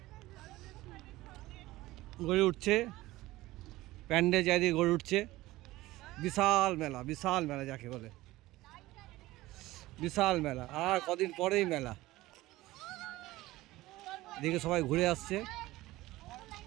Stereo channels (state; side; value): quieter; left; 17.9 dB